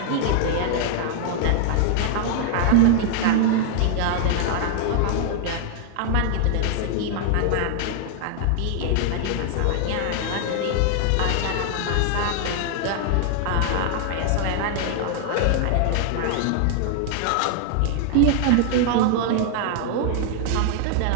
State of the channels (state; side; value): different; both; correlation 0.00